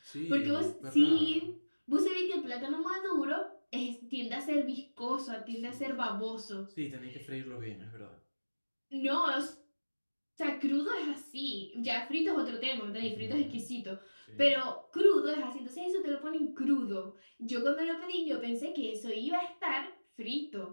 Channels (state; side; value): inverted; both; correlation -1.00